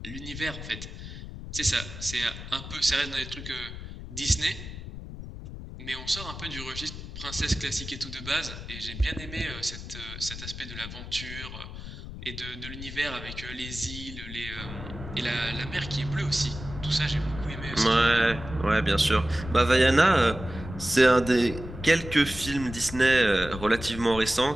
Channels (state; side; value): noise; left; rumble, 10 dB below the sound